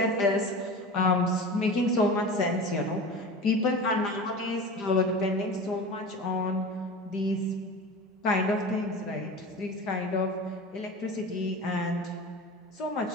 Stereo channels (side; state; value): both; normal; correlation 0.32